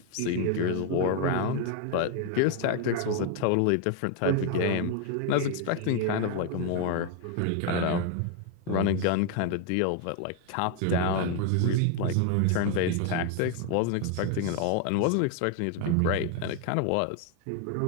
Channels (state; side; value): different; both; correlation 0.01